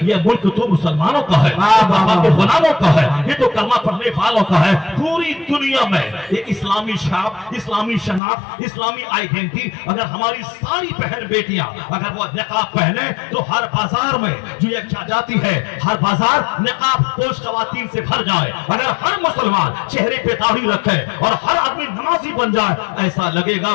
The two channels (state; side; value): drops out; right; at 8.2 s